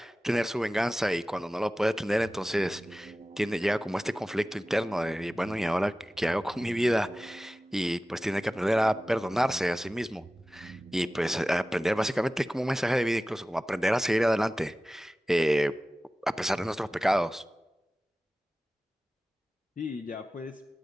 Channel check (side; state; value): both; normal; correlation 0.96